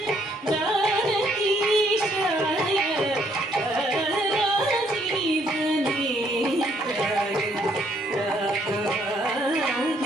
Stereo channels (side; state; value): both; normal; correlation 0.68